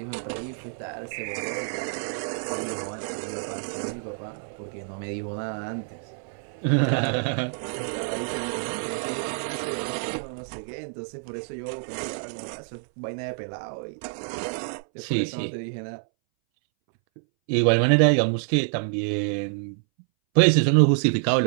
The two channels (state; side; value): silent; left; 60 dB below the other